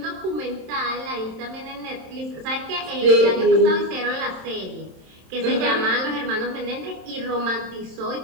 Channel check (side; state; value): left; late; 27 ms